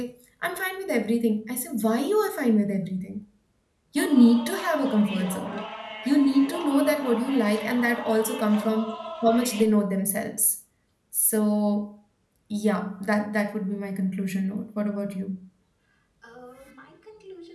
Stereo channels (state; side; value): identical; both; correlation 1.00